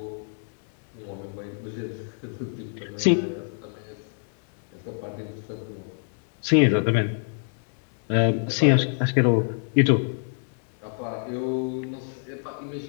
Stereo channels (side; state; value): right; silent; digital silence